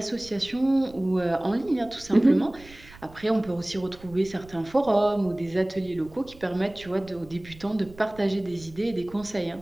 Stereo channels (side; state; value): right; noise; rumble, 21 dB below the sound